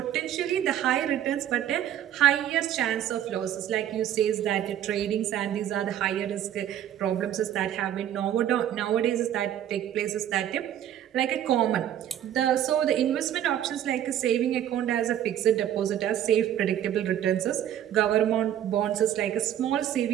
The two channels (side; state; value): left; quieter; 11.0 dB